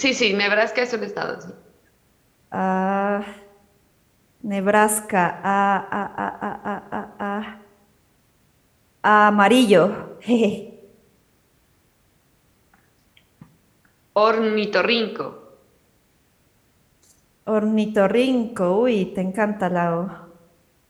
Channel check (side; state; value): both; identical; correlation 1.00